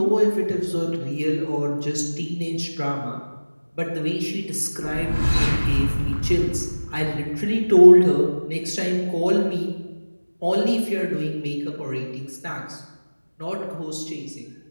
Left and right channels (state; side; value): inverted; both; correlation -1.00